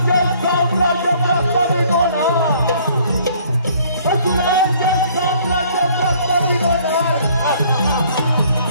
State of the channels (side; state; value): both; inverted; correlation -0.59